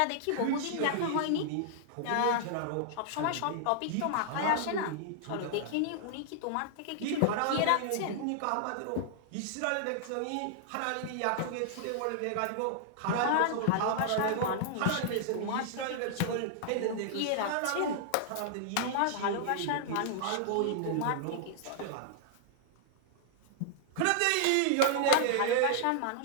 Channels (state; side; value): different; both; correlation -0.01